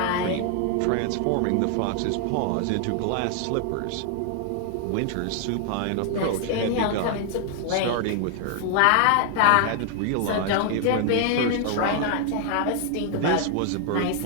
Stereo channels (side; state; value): both; different; correlation 0.00